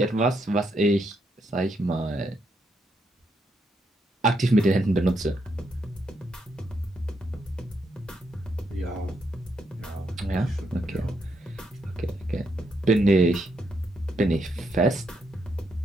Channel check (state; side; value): normal; both; correlation 0.78